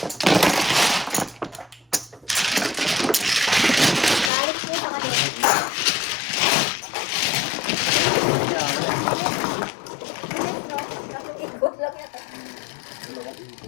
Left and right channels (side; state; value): right; drops out; at 4.3 s